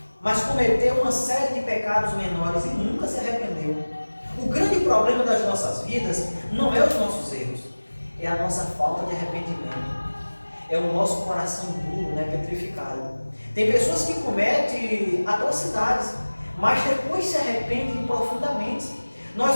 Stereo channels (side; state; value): both; inverted; correlation -1.00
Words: mas cometeu uma série de pecados menores e nunca se arrependeu. O grande problema das nossas vidas não é os nossos erros, é a nossa falta de arrependimento. É o nosso coração duro, né, petrificado. Tem pessoas que cometem atrocidades, mas depois se arrependem profundamente. Nós